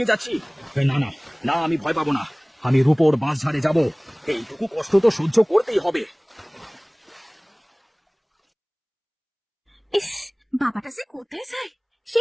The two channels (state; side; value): identical; both; correlation 1.00